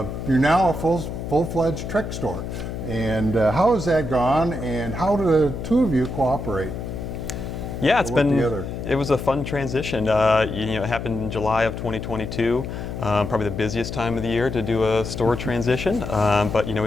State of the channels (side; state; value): left; noise; hum, 6 dB below the sound